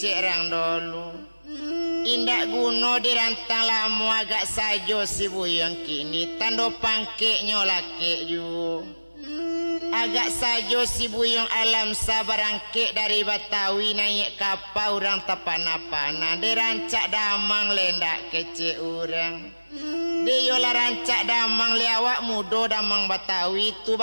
dulu indak guno dirantang lamu agak sajo si buyang kini tando pangkeknya laki ju agak sajo si buyong alam sabarangkek dari Batawi naik kapal orang tapana-pana dirancak damang lendak kece orang deyola rancak damang liawak mudo damang Batawi tu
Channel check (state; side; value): inverted; both; correlation -1.00